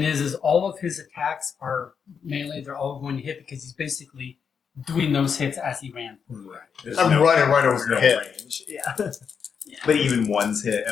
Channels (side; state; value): right; quieter; 6.6 dB